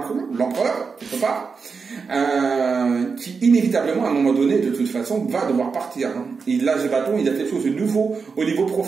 l'empereur, quelque part, qui inévitablement, à un moment donné, de toute façon, va devoir partir. Et là, ce bâton, il y a quelque chose de nouveau au niveau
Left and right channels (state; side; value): quieter; left; 5.2 dB